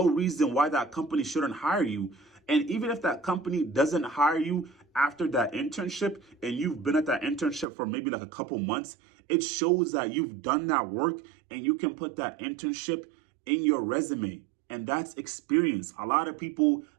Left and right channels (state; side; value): drops out; left; at 7.7 s